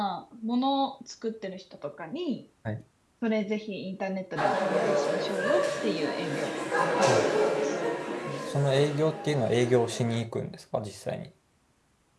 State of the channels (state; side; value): identical; both; correlation 1.00